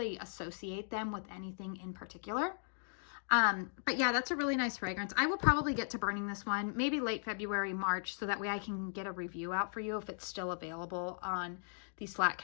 associate them with anything in particular. But yeah, that's a really nice fragrance. I will probably get to burning this one maybe late February, March, so that way I can get a review out for you if it's still available on the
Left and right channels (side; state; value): right; silent; digital silence